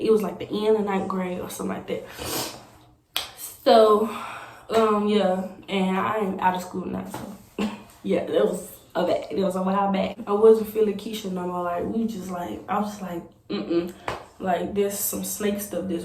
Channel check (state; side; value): identical; both; correlation 1.00